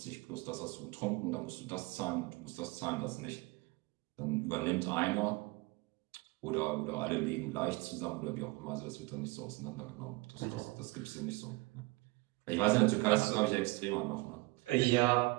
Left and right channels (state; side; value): quieter; left; 24.5 dB